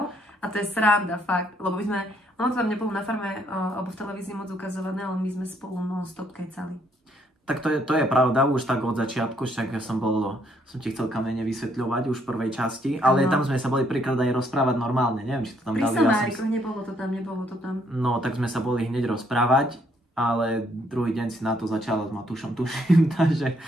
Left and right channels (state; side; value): normal; both; correlation 0.69